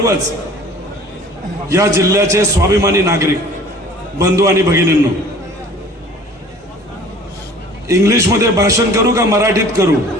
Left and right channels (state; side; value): normal; both; correlation 0.48